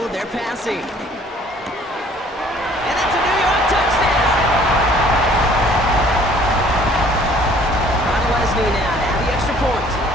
They're passing. And that's a New York touchdown. Ron Leslie now to have the extra point.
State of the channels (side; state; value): both; normal; correlation 0.56